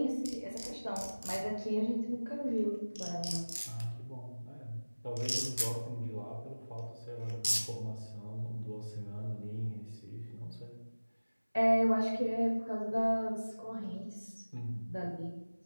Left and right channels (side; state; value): both; inverted; correlation -1.00